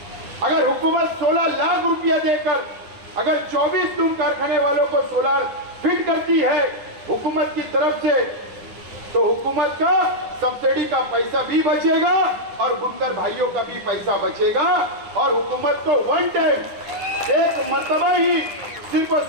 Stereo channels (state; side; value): late; left; 9.9 ms